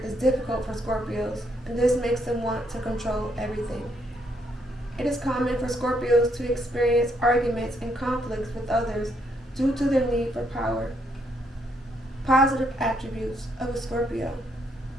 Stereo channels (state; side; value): normal; both; correlation 0.74